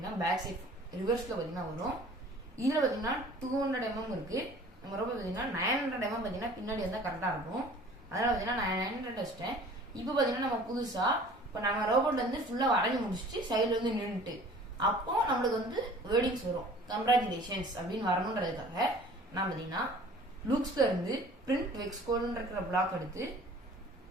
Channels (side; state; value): both; normal; correlation 0.48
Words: பேக் சைட் ரிவர்ஸில் பார்த்தீங்கன்னா வரும். இதில் பார்த்தீங்கன்னா 200 mm இருக்கு. நம்ம ரோபோட் பார்த்தீங்கன்னா 900 mm பார்த்தீங்கன்னா பின்னாடி வந்தால் கரெக்டாக இருக்கும். அதனால பார்த்தீங்கன்னா நான் 900 வச்சிட்டேன். இப்போ பார்த்தீங்கன்னா நம்ம புதுசாக இப்போ நம்ம ரோபோட் வந்து ஃபுல்லாக வரைஞ்சி முடிச்சுட்டு சைடில் வந்து நின்றுட்டு அப்போ நம்மளுக்கு வந்து வேர்டிங்ஸ் வரும். கங்க்ராச்சுலேஷன்ஸ் அப்படின்னு வரணுன்றதுக்காக நான் பார்த்தீங்கன்னா லூக்ஸ்ல இருந்து பிரிண்ட் வெக்ஸ் கோடுன்னு இருக்கிற பிளாக் எடுத்து